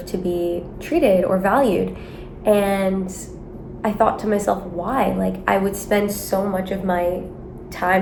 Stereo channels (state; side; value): identical; both; correlation 1.00